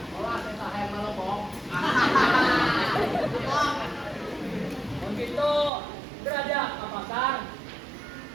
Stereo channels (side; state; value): left; drops out; at 5.7 s